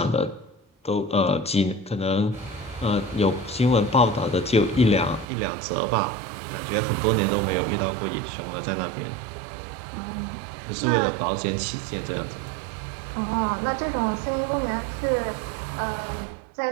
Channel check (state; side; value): drops out; left; at 5.2 s